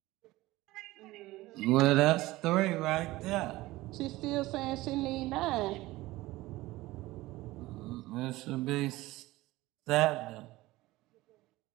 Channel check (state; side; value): quieter; left; 18.5 dB